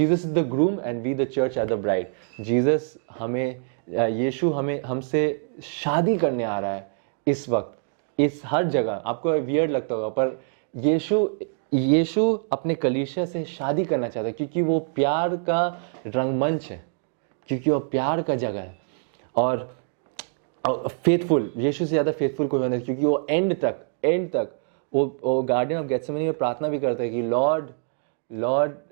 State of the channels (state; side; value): silent; left; digital silence